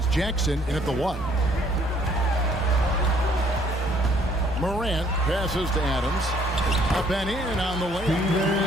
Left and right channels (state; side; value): normal; both; correlation 0.63